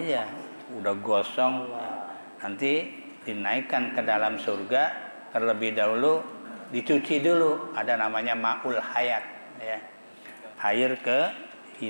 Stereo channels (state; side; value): inverted; both; correlation -1.00